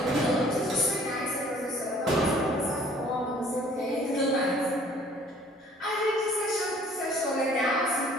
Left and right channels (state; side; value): normal; both; correlation 0.55